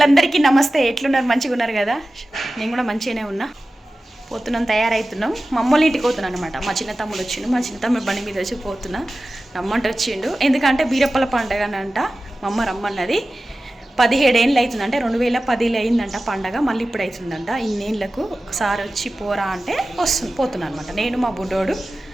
నమస్తే. ఎట్లున్నారు? మంచిగా ఉన్నారు కదా? నేను కూడా మంచిగానే ఉన్నా. పోతున్నాం, తయారవుతున్నాం. మా అమ్మోళ్ళ ఇంటికి పోతున్నాను అనమాట. మా చిన్న తమ్ముడు వచ్చిండు. మా చిన్న తమ్ముడు బండి మీద వచ్చి పోతున్నా. రమ్మంటే వచ్చిండు. ఎందుకంటే బీరప్పల పండుగ అంట. మా అమ్మ రమ్మన్నది. 17 ఏళ్ళు అవుతుందంటే 2010 అయిందంట పండగ. మళ్ళీ ఇప్పుడు అవుతుందంట. ఇన్నేళ్ళకు ఒకసారి వచ్చి పోరా అంటే పోతున్నాను అనమాట. నేను మా బుడ్డోడు.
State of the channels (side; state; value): both; normal; correlation 0.95